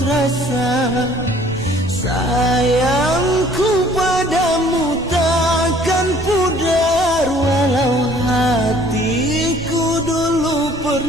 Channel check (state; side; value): noise; right; rumble, 15 dB below the sound